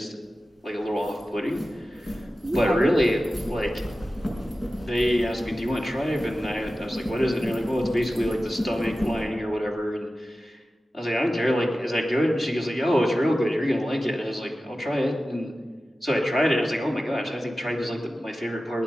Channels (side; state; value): both; normal; correlation 0.94